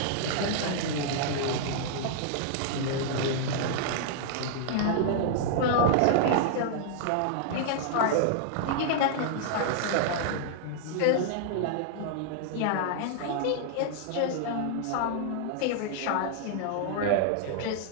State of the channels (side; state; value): both; different; correlation -0.01